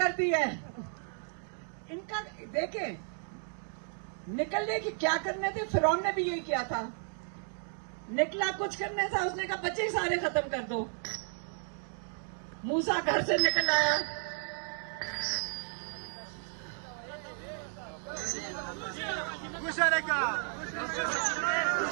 दी है। इनका देखें, निकलने की क्या करने थे, फिरौन ने भी यही किया था। निकला कुछ करने था, उसने कहा बच्चे ही सारे खत्म कर दो। मूसा घर से निकल आया,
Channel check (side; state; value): left; silent; 55 dB below the other